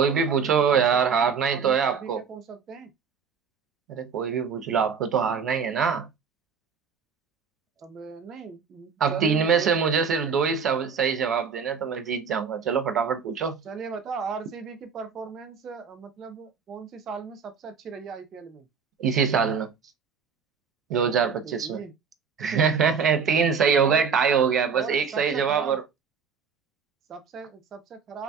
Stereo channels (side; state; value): left; quieter; 6.1 dB